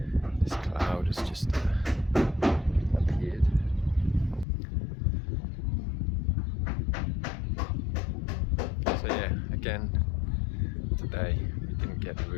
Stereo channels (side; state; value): right; drops out; at 4.5 s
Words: this cloud has just appeared. So yeah, again today we didn't get the